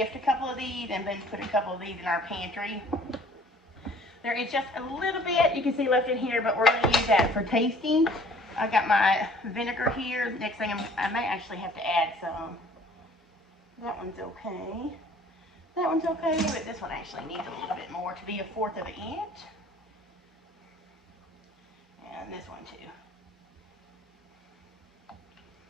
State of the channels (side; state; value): both; normal; correlation 0.53